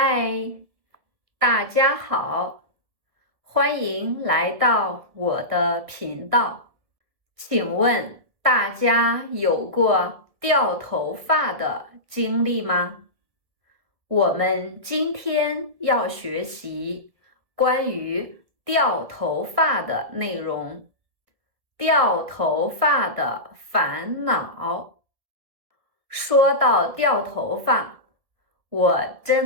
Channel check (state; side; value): late; left; 1.7 ms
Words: 大家好，欢迎来到我的频道。请问大家有过掉头发的经历吗？我们今天要学习关于掉头发的内容，掉头发的烦恼。说到掉头发，我